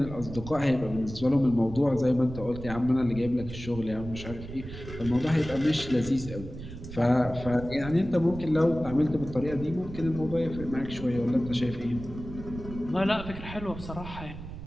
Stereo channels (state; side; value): noise; right; rumble, 12 dB below the sound